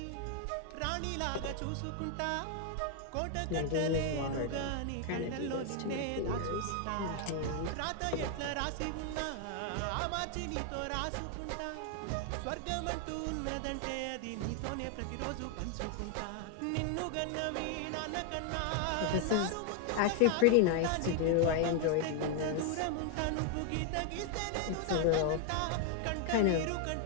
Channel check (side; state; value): both; different; correlation 0.00